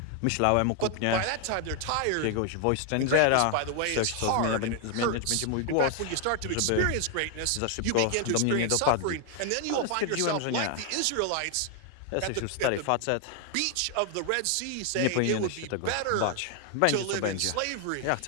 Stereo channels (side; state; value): both; different; correlation 0.00